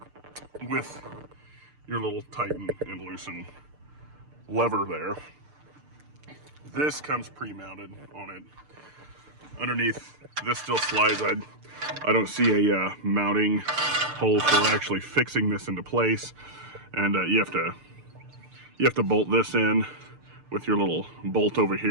with your little tighten and loosen lever there. This comes pre-mounted on it. Underneath, this still slides. I don't see a mounting hole for actually fixing this into place. And you have to bolt this in with your little bolt over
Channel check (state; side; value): late; left; 6.7 ms